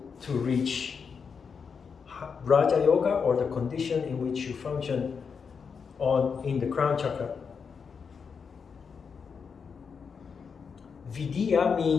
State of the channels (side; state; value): right; quieter; 6.0 dB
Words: to reach Raja Yoga, or the condition in which you function in the crown chakra. Vidya